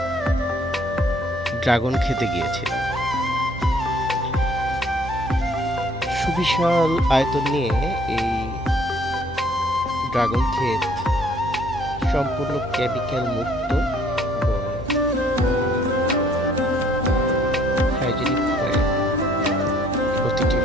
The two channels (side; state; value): both; normal; correlation 0.61